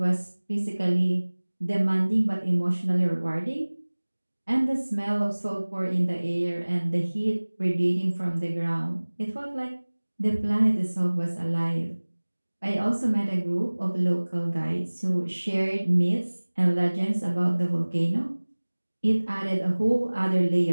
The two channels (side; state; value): both; inverted; correlation -1.00